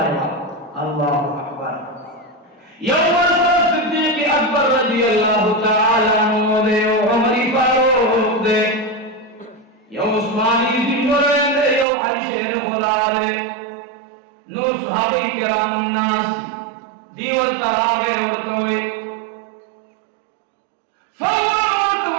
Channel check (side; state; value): left; drops out; at 11.9 s